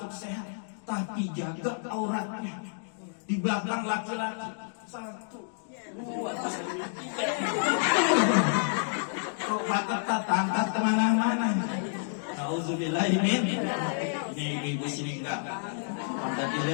sehat, tapi jaga auratnya. Di belakang laki-laki. 1, 2, 3. Kok ketat angkat kemana-mana. Nauzubillahi min. Ini ibu-ibu sini enggak. Pada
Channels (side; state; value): right; silent; digital silence